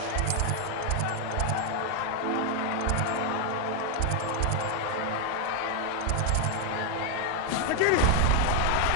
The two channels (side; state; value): both; different; correlation 0.01